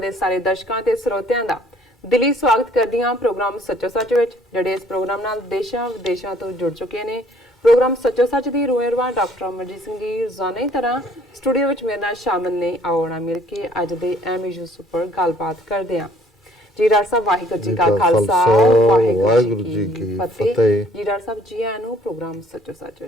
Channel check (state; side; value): normal; both; correlation 0.59